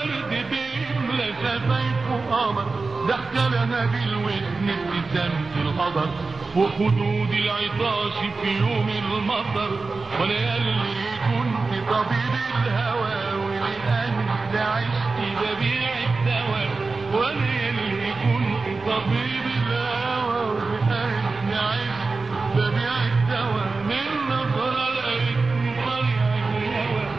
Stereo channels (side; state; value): left; quieter; 3.9 dB